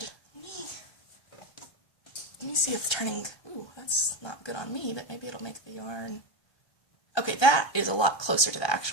Let me see if turning, ooh, that's not good on me, but maybe it'll make the yarn. Okay, that is a lot closer to the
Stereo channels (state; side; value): late; right; 1.2 ms